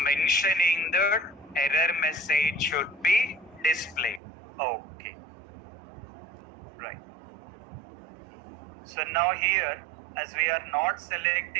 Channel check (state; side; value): drops out; left; at 4.2 s